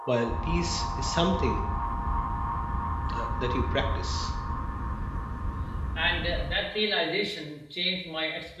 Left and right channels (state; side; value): identical; both; correlation 1.00